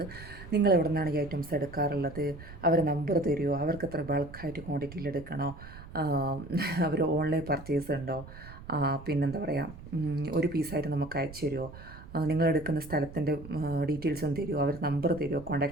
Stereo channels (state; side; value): noise; right; rumble, 15 dB below the sound